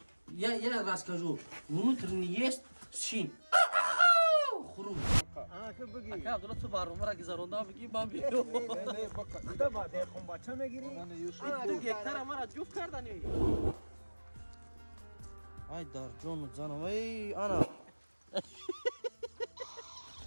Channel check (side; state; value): both; inverted; correlation -1.00